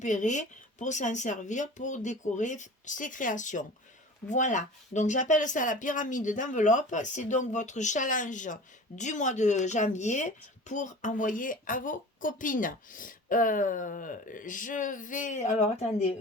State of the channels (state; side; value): normal; both; correlation 0.39